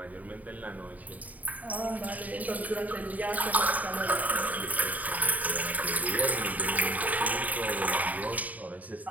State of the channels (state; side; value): late; left; 0.074 ms